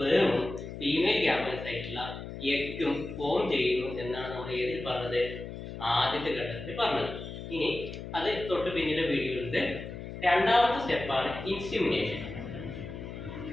ഫീമെയിൽ ഗ്യാമേറ്റ്സ് ആയിട്ടുള്ള എഗ്ഗും ഫോം ചെയ്യുന്നു എന്നാണ് നമ്മൾ ഏതിൽ പറഞ്ഞത്, ആദ്യത്തെ ഘട്ടത്തിൽ പറഞ്ഞത്. ഇനി അത് തൊട്ട് പിന്നീട് വീഡിയോയിലുണ്ട്. രണ്ടാമത്തെ സ്റ്റെപ്പാണ് ഇൻസിമിനേഷൻ.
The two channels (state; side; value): noise; left; hum, 9 dB below the sound